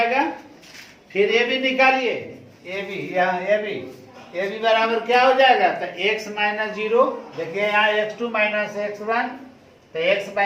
फिर ये भी निकालिए, ये भी बराबर क्या हो जाएगा? तो x - 0 देखिए यहाँ x2 - x1, तो x -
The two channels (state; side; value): identical; both; correlation 1.00